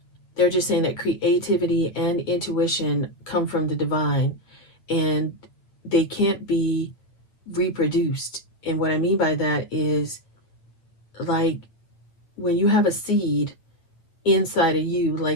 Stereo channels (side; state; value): right; late; 8.7 ms